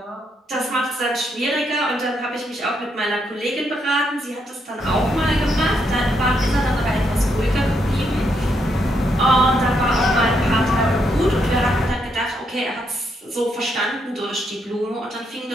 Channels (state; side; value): normal; both; correlation 0.77